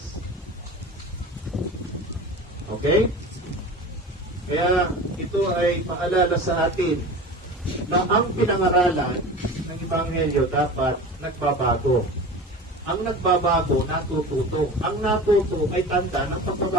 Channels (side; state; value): both; normal; correlation 0.34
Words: Okay? Kaya ito ay paalala sa atin na ang pinangaralan ng Ebanghelyo dapat nagbabago. Ang nagbabago, natututo. Ang natuto ay tanda ng